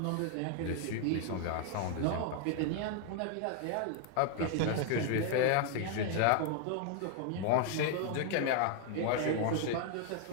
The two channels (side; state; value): both; different; correlation 0.00